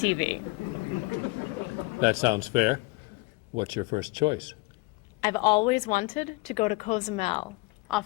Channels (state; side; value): quieter; right; 24.8 dB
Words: That sounds fair. What's your first choice? I've always wanted to go to Cozumel,